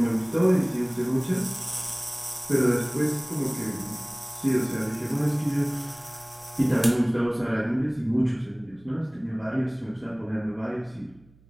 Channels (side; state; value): right; noise; hum, 28 dB below the sound